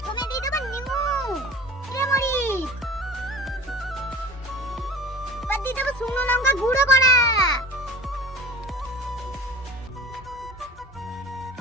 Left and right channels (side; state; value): both; normal; correlation 0.39